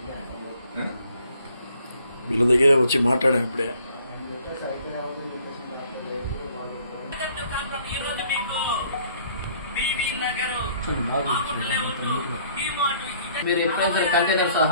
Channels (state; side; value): inverted; both; correlation -0.60